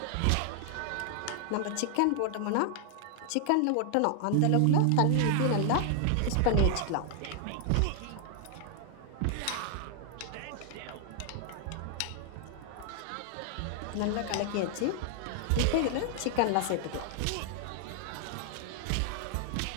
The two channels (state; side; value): different; both; correlation 0.00